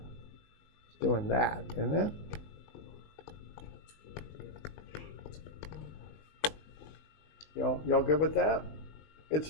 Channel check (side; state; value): right; late; 20 ms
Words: it's doing that, isn't it? Y'all good with that? It's